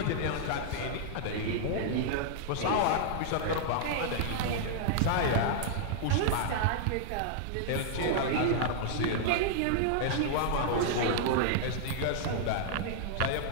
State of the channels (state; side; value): different; both; correlation -0.01